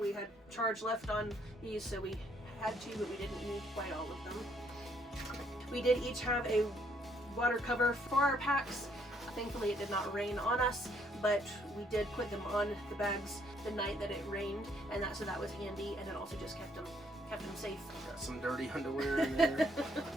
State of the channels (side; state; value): both; normal; correlation 0.68